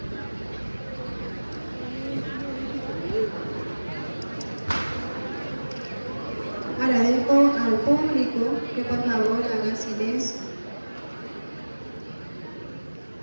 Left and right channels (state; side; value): inverted; both; correlation -1.00